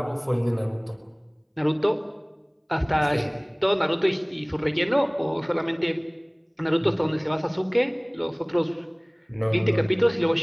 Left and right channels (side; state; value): both; identical; correlation 1.00